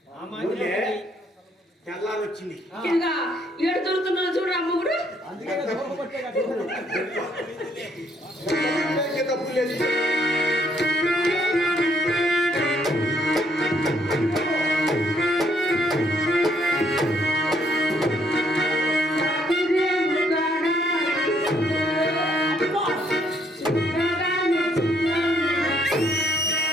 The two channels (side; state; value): both; normal; correlation 0.69